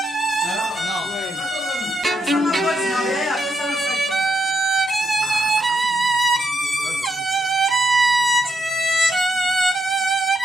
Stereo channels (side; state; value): both; normal; correlation 0.79